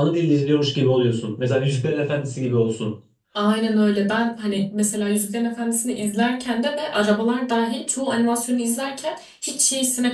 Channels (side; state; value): both; identical; correlation 1.00